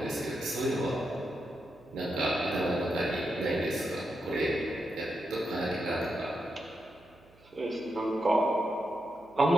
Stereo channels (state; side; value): noise; right; hum, 28 dB below the sound